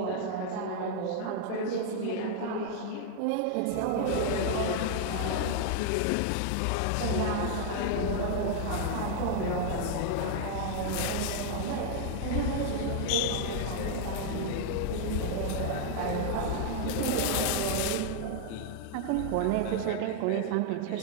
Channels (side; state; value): both; different; correlation 0.00